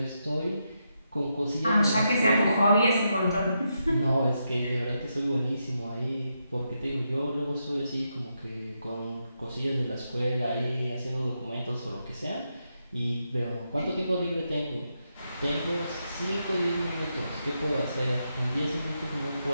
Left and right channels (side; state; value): both; inverted; correlation -0.83